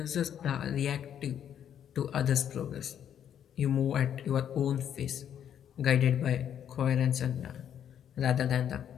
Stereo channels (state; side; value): quieter; right; 9.4 dB